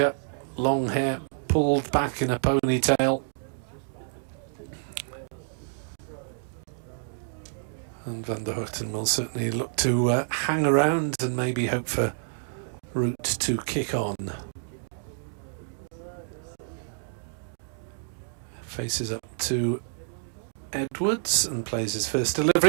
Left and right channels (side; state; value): left; silent; digital silence